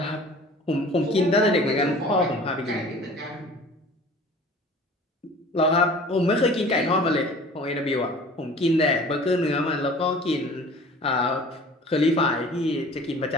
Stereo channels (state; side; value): normal; both; correlation 0.45